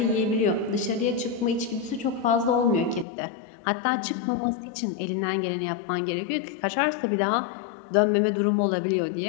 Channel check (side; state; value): right; drops out; at 3.1 s